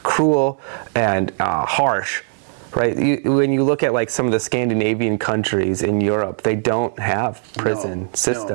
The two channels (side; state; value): left; silent; 64 dB below the other